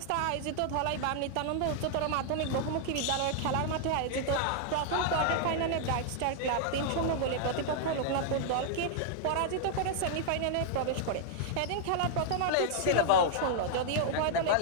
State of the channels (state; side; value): different; both; correlation -0.01